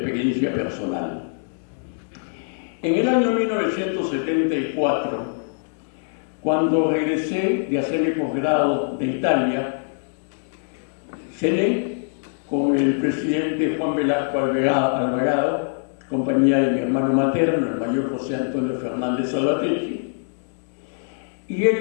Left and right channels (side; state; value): right; silent; digital silence